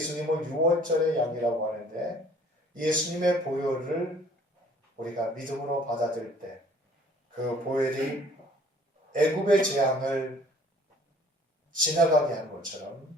6월절의 양이라고 하는데 예수님의 보혈을 우리가 믿음으로 받아들일 때 그 보혈이 애굽의 재앙을 지나가게 한 것처럼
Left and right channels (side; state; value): both; normal; correlation 0.55